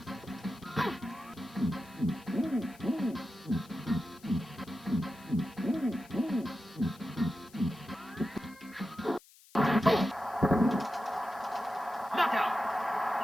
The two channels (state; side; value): noise; left; hiss, 25 dB below the sound